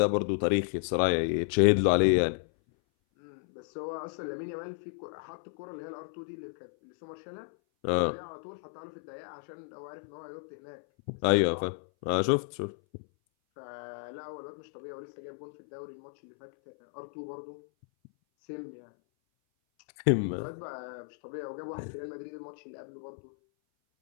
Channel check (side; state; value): right; silent; 56 dB below the other